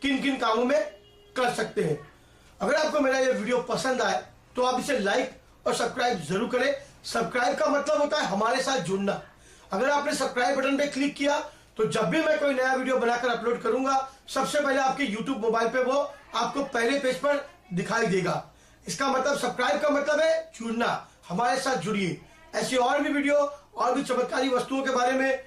किन किन कामों में कर सकते हैं। अगर आपको मेरा ये वीडियो पसंद आए तो आप इसे लाइक और सब्सक्राइब जरूर करें। सब्सक्राइब का मतलब होता है हमारे साथ जुड़ना। अगर आपने सब्सक्राइब बटन पे क्लिक किया तो जब भी मैं कोई नया वीडियो बनाकर अपलोड करूंगा सबसे पहले आपके YouTube मोबाइल पे वो आपको पहले पेज पर दिखाई देगा। इसका मतलब सब्सक्राइब का मतलब है जुड़ना, हमारे साथ जुड़िए। ऐसी और भी वीडियो और भी चमत्कारी वस्तुओं के बारे में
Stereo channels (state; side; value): identical; both; correlation 1.00